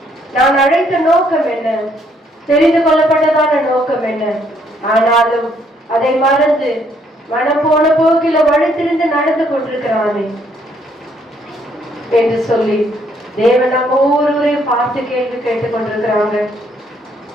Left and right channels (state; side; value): normal; both; correlation 0.69